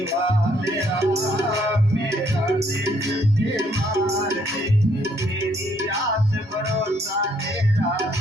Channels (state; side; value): normal; both; correlation 0.68